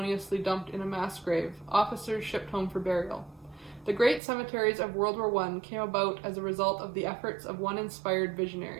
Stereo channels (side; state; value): left; drops out; at 4.2 s